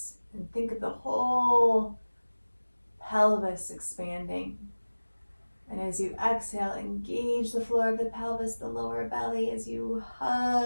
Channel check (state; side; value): inverted; both; correlation -1.00